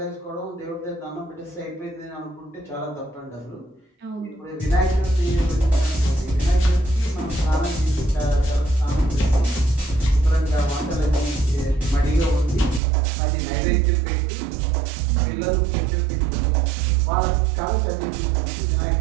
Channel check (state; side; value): drops out; left; at 12.8 s